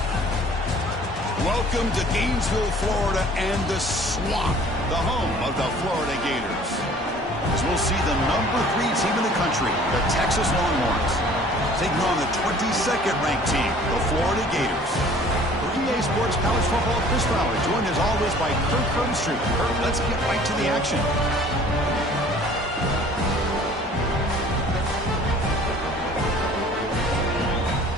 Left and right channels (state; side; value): normal; both; correlation 0.51